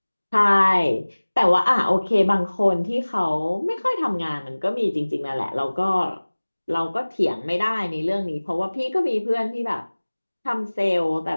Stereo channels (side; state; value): both; inverted; correlation -1.00